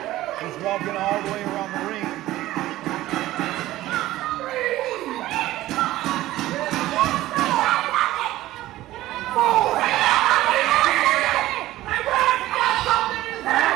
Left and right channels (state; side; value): quieter; left; 15.9 dB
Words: He's walking all the way around the ring.